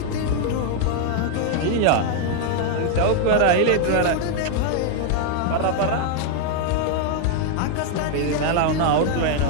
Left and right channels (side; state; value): both; different; correlation 0.00